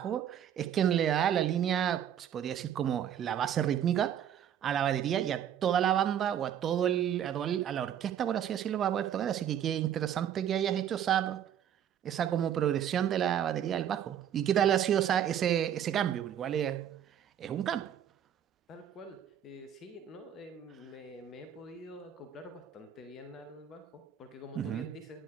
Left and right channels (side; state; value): left; quieter; 9.8 dB